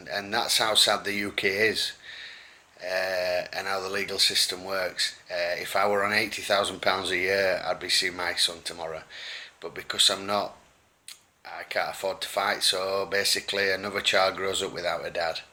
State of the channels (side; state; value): both; identical; correlation 1.00